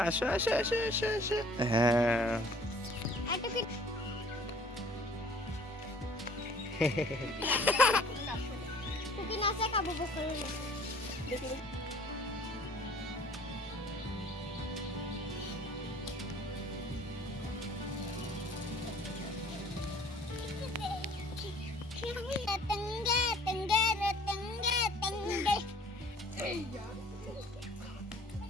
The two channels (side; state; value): both; normal; correlation 0.53